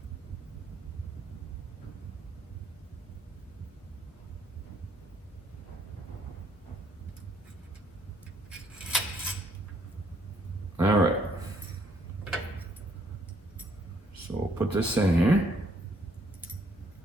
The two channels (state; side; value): normal; both; correlation 0.67